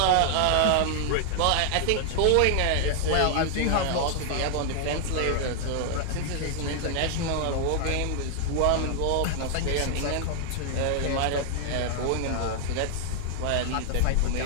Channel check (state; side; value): different; both; correlation 0.00